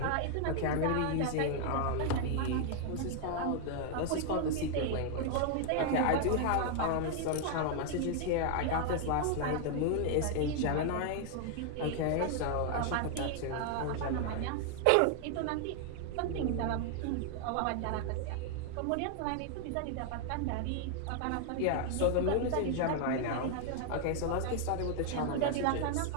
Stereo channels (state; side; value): different; both; correlation 0.00